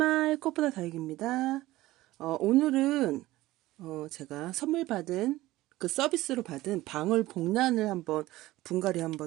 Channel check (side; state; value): left; quieter; 17.3 dB